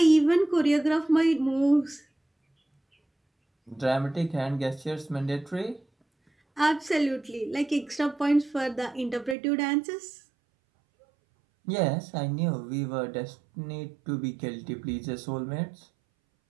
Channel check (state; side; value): drops out; left; at 9.3 s